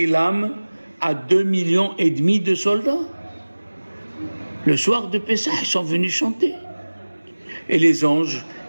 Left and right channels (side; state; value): both; inverted; correlation -1.00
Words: l'âme à 2,5 millions de soldats. Le soir de Pessah, ils sont venus chanter. Et les anges,